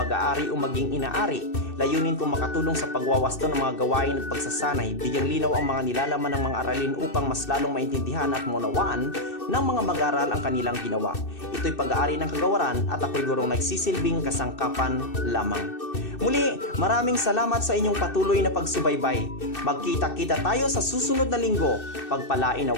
o maging inaari. Layunin kong makatulong sa pagwawasto ng mga gawain at pagsasanay, bigyang linaw ang mga nilalaman ng mga aralin upang mas lalong maintindihan at maunawaan ng mga mag-aral ang kanilang ginawa. Ito'y pag-aari ng kagawaran at ako'y gurong nagsisilbing kasangkapan lamang. Muli, maraming salamat sa inyong patuloy na pagsubaybay. Magkita-kita tayo sa susunod na linggo. Pagpalain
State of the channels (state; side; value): late; right; 2.6 ms